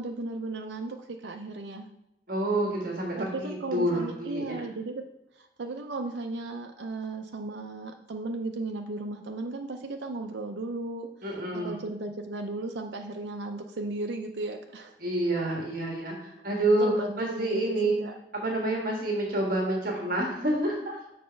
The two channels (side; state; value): both; normal; correlation 0.51